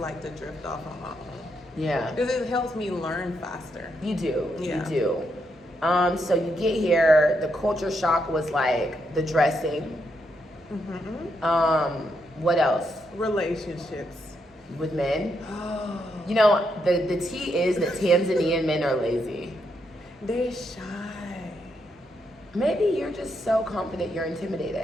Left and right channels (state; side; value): normal; both; correlation 0.80